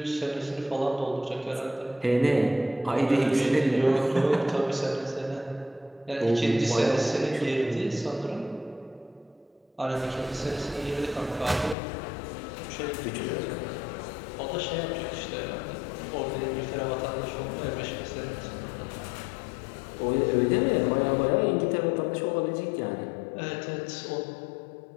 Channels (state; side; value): drops out; right; at 11.8 s